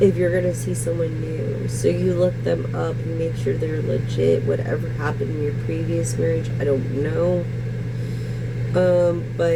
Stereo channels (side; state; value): both; identical; correlation 1.00